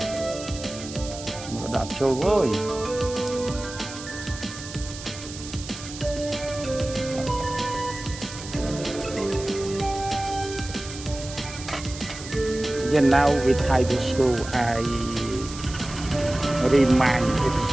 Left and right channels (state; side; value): noise; right; hiss, 12 dB below the sound